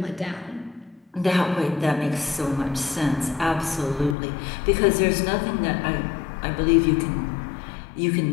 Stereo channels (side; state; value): right; drops out; at 4.2 s